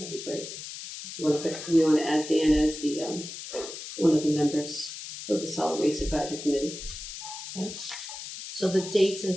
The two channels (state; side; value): noise; left; hiss, 10 dB below the sound